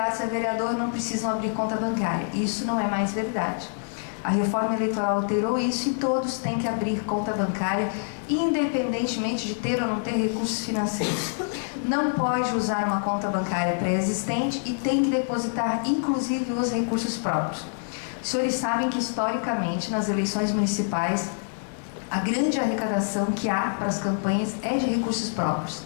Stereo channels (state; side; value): silent; right; digital silence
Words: a vereador não precisam abrir conta bancária. Isso não é mais verdade. A reforma eleitoral alterou isso e todos têm que abrir conta bancária, independentemente de ter ou não ter recursos financeiros. Não pode usar uma conta bancária pré-existente e tem que depositar, inclusive, os recursos próprios. Os senhores sabem que, historicamente, nas eleições municipais, a grande arrecadação que há para as campanhas é de recursos próprios.